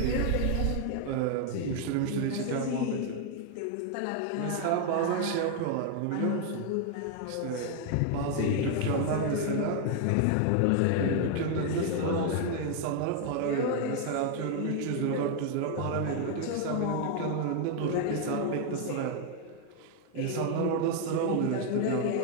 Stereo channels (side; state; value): both; different; correlation 0.00